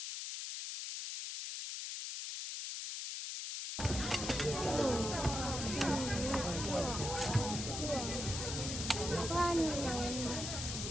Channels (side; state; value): left; noise; hiss, 5 dB below the sound